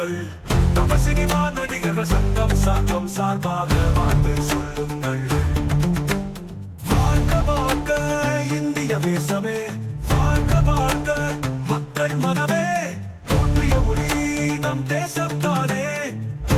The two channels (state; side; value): identical; both; correlation 1.00